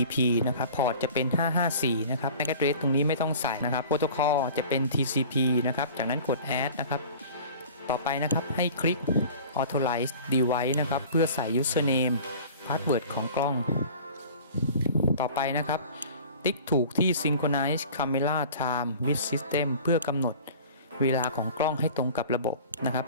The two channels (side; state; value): both; inverted; correlation -0.43